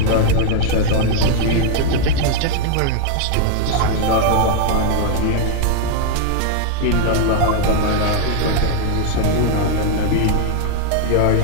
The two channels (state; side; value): different; both; correlation 0.00